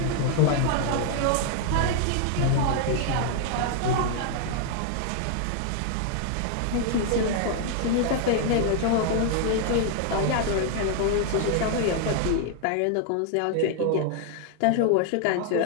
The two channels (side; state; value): both; different; correlation 0.00